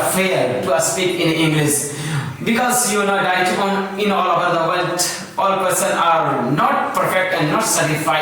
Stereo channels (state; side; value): identical; both; correlation 1.00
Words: fear to speak in English. Because you know that in all over the world, all persons are not perfect and not